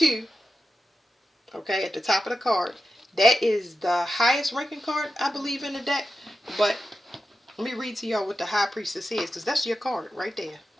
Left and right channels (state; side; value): normal; both; correlation 0.90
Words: Okay, at the top of the card. That is the highest ranking card, I believe, in the deck. But let me read to y'all what the high priestess is, because that's your card right there.